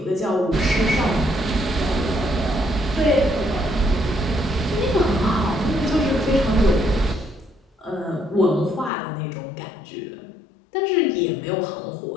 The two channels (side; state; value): right; drops out; at 8.9 s